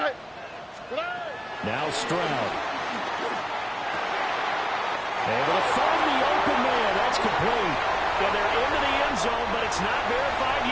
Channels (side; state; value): both; identical; correlation 1.00